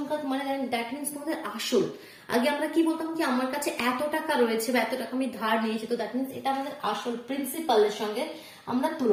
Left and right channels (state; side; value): identical; both; correlation 1.00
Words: মানে দ্যাট মিনস তোমাদের আসল। আগে আমরা কি বলতাম কি আমার কাছে এত টাকা রয়েছে বা এত টাকা আমি ধার নিয়েছি, তো দ্যাট মিনস এটা আমাদের আসল প্রিন্সিপালের সঙ্গে আমরা